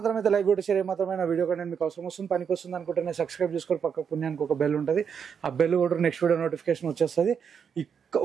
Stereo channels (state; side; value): quieter; left; 7.0 dB